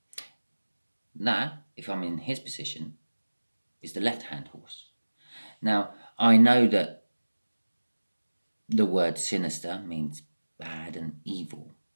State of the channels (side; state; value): both; inverted; correlation -1.00